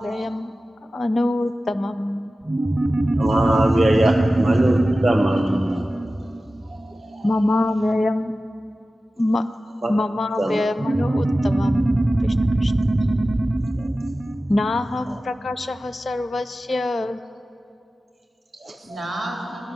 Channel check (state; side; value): normal; both; correlation 0.95